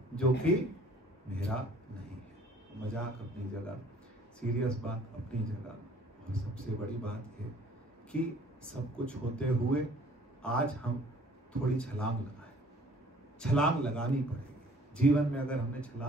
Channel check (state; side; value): normal; both; correlation 0.55